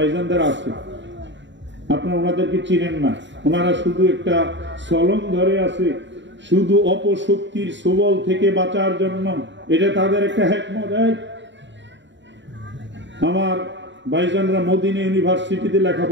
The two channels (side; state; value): left; late; 0.53 ms